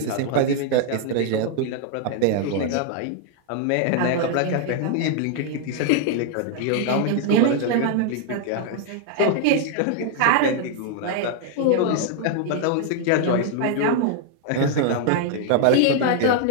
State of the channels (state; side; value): different; both; correlation 0.00